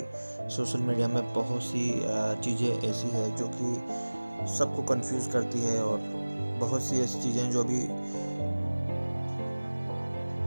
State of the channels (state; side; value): inverted; both; correlation -1.00